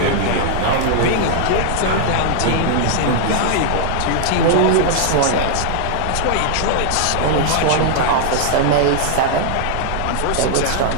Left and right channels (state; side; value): different; both; correlation -0.01